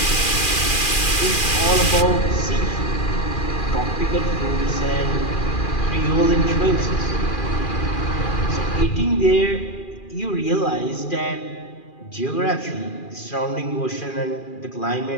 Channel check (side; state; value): right; late; 2.4 ms